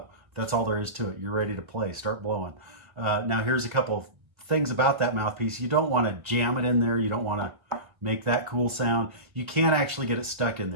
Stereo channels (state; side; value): late; left; 1.3 ms